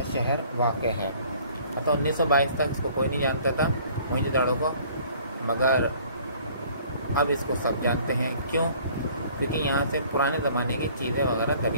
शहर वाक़ है। तो 1922 तक इसको कोई नहीं जानता था, मोहनजोदाड़ो को, मगर अब इसको सब जानते हैं। क्यों? क्योंकि यहाँ से पुराने ज़माने की चीज़ें वगैरह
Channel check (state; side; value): inverted; both; correlation -0.55